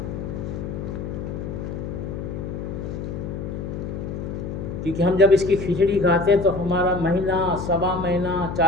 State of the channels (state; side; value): noise; left; hum, 6 dB below the sound